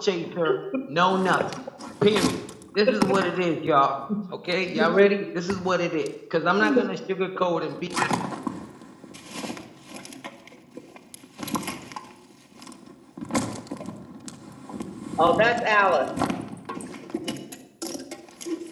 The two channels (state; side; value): identical; both; correlation 1.00